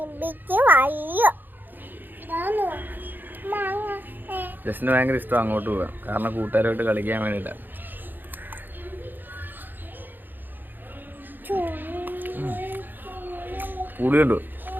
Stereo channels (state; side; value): late; left; 0.090 ms